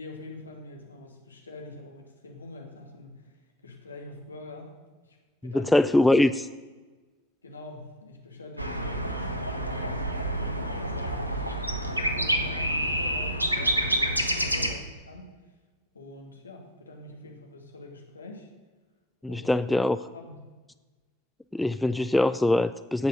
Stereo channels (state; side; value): normal; both; correlation 0.37